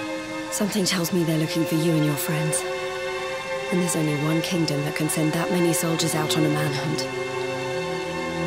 Something tells me they're looking for you and your friends. And there's only one kingdom that can send that many soldiers out on a manhunt.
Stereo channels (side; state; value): both; identical; correlation 1.00